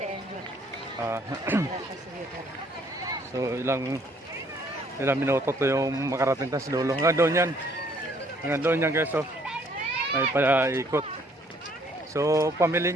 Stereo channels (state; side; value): normal; both; correlation 0.63